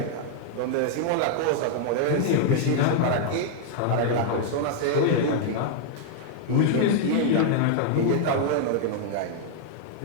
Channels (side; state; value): both; different; correlation -0.01